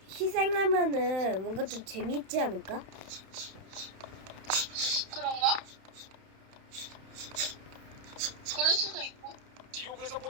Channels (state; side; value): late; left; 31 ms